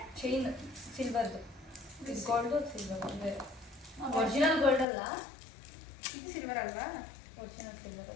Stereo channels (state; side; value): drops out; right; at 4.9 s